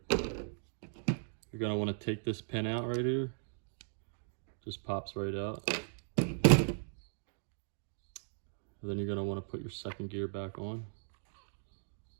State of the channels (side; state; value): left; silent; digital silence